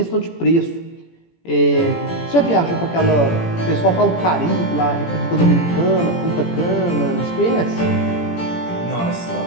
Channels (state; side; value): late; right; 17 ms